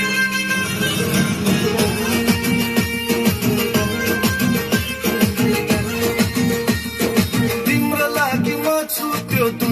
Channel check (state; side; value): identical; both; correlation 1.00